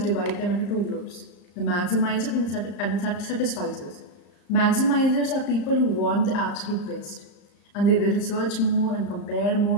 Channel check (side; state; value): right; late; 34 ms